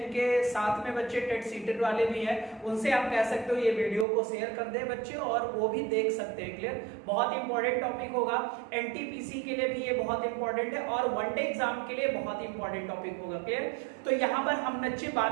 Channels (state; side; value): drops out; left; at 4.0 s